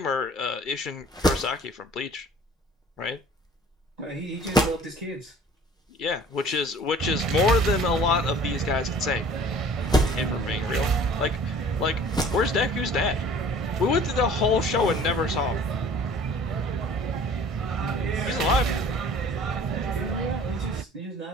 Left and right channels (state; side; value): normal; both; correlation 0.49